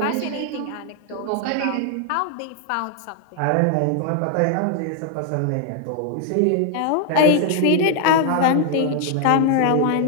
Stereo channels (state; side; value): different; both; correlation 0.00